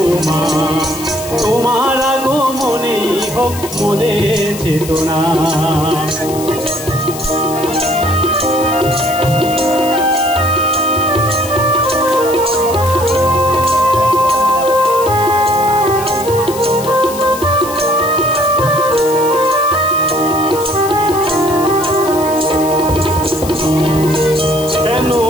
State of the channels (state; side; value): noise; left; hiss, 12 dB below the sound